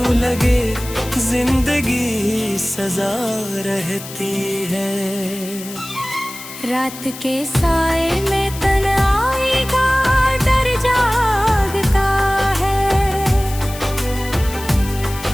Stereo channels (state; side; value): noise; left; hiss, 13 dB below the sound